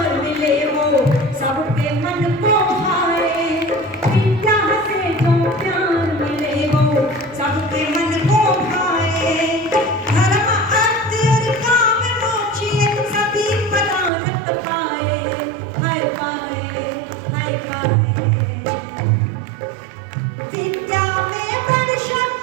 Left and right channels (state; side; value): drops out; left; at 14.1 s